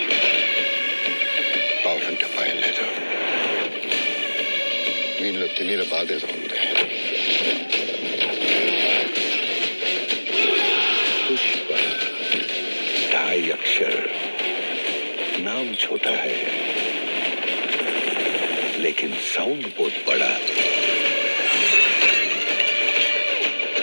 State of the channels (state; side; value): inverted; both; correlation -1.00